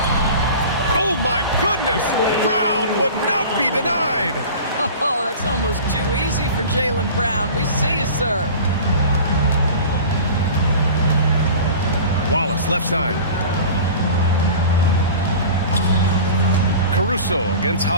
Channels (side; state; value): both; inverted; correlation -0.38